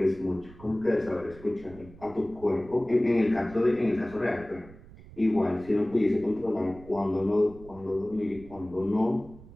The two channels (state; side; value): noise; right; rumble, 20 dB below the sound